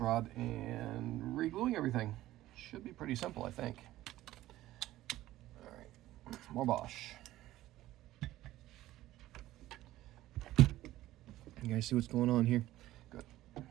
and re-gluing everything. Should be pretty simple, I think. All right, more Bosch. You guys see what's going on here? Good.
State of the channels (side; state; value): left; quieter; 15.3 dB